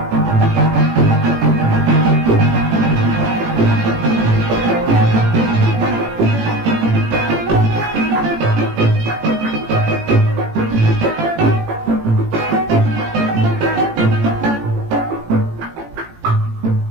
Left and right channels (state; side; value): late; left; 18 ms